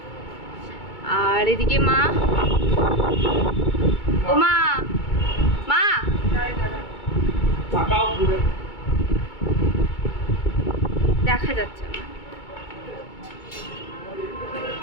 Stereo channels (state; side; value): late; right; 2.2 ms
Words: আর এদিকে মা। ও মা, মা দেখা যাচ্ছে না,